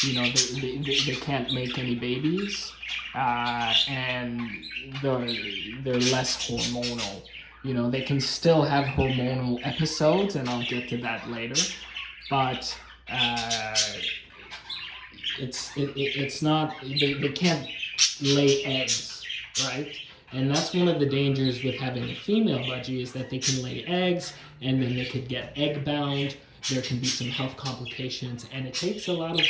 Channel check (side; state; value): both; identical; correlation 1.00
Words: they can't make any babies, and they're less hormonal. They can still have hormonal episodes, and I'll get to that later, but it's not, they can't lay eggs, right? And that's one of the dangers with having a female budgie, is that they can lay eggs, and then they could get egg bound. There can be some health complications, and it takes a lot